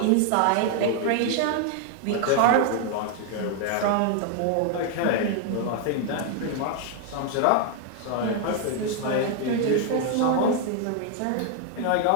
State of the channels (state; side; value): different; both; correlation 0.00